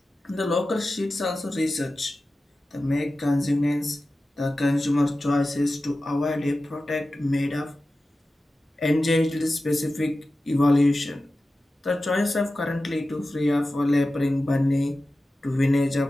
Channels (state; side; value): normal; both; correlation 0.94